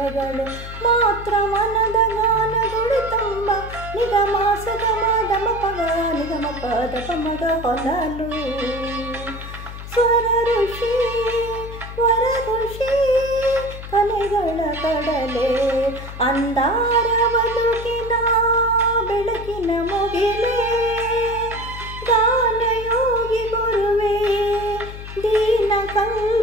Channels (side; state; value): left; noise; hum, 11 dB below the sound